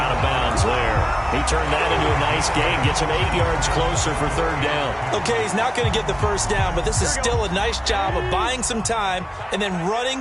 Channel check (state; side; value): identical; both; correlation 1.00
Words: of bounds there. He turned that into a nice gain. Gets him 8 yards closer for 3rd down. Okay, he's not going to get the first down, but this is still a nice job of buying some time and then